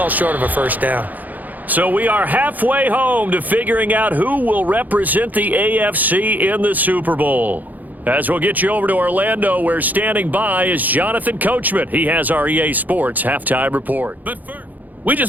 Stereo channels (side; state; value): left; late; 0.082 ms